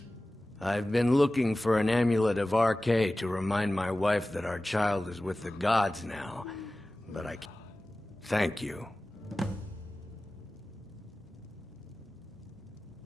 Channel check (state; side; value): normal; both; correlation 0.97